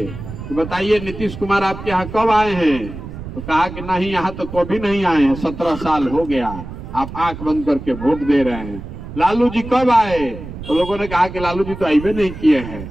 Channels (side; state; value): right; noise; rumble, 11 dB below the sound